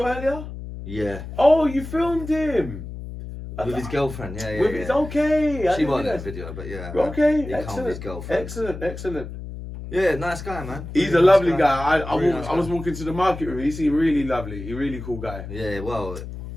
earlier? Yeah. Oh, you filmed him. With his girlfriend, yeah. With his, okay. I She didn't wasn't in realise. the video, but yeah. Okay, He come with his excellent. girlfriend. Excellent. Yeah, nice guy, man. He's a Really lovely nice guy. Really nice I was walking to the market with him. He seemed really lovely. He's a really cool guy. Yeah, well,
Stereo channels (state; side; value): noise; left; hum, 10 dB below the sound